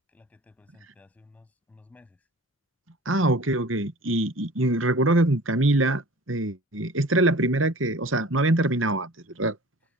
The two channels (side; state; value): both; normal; correlation 0.43